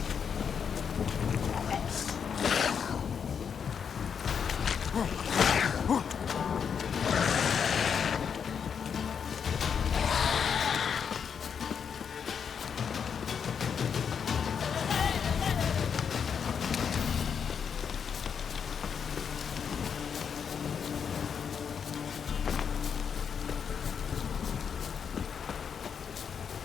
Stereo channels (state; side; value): quieter; right; 7.0 dB